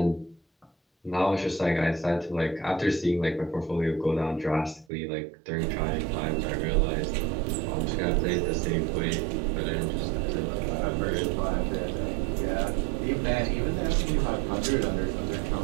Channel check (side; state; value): left; drops out; at 4.9 s